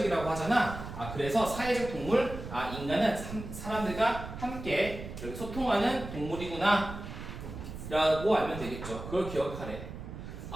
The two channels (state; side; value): noise; right; rumble, 10 dB below the sound